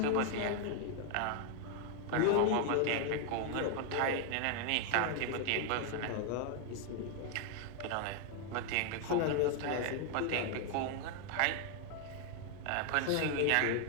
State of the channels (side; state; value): both; different; correlation 0.00